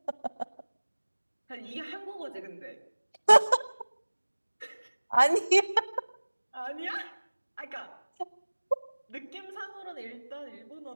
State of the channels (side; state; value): both; inverted; correlation -1.00